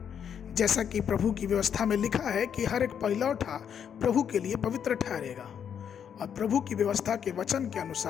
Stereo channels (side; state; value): right; quieter; 8.2 dB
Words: जैसा कि प्रभु की व्यवस्था में लिखा है कि हर एक पहिलौठा प्रभु के लिए पवित्र ठहरेगा, और प्रभु की व्यवस्था के वचन के